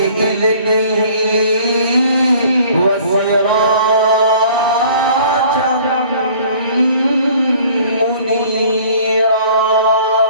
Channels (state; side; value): inverted; both; correlation -0.52